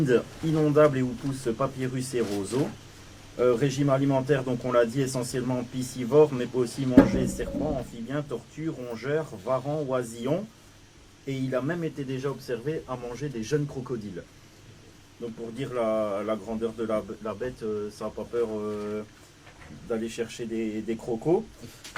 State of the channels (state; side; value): identical; both; correlation 1.00